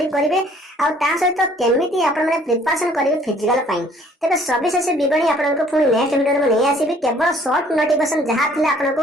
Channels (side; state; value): both; normal; correlation 0.58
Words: करिवे आ ता सहित केमिति आपण माने प्रिपरेशन करिवे फिजिकल फाइन तबे सविशेष विवरणी आपनको पुनी नेक्स्ट वीडियो में नै आसीबी केवल शॉर्ट नोटिफिकेशन जहा थिला आपनको